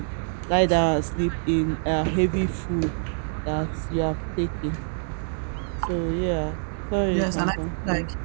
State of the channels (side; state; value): left; silent; 61 dB below the other